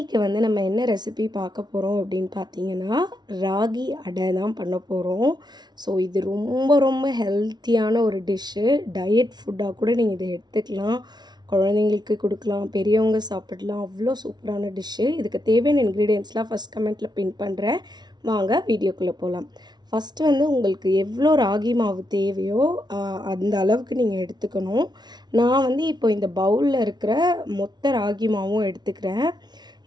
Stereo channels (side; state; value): left; late; 0.20 ms